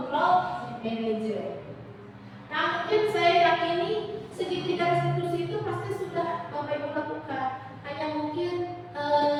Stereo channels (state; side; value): identical; both; correlation 1.00